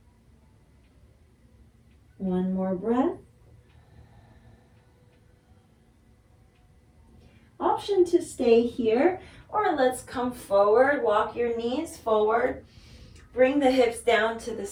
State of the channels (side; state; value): both; identical; correlation 1.00